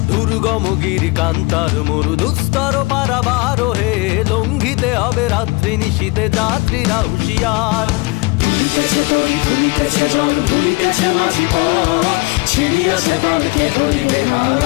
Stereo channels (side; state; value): right; quieter; 25.2 dB